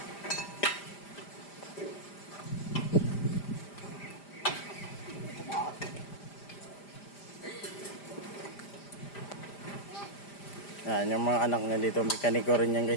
Yan, yung mga anak niya dito, mekaniko rin yan,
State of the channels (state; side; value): late; right; 5.0 ms